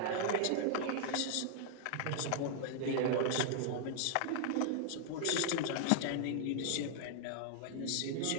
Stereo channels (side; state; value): both; different; correlation -0.01